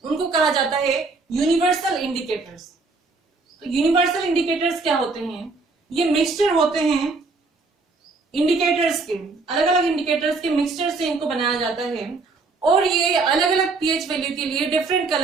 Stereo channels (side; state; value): left; quieter; 3.9 dB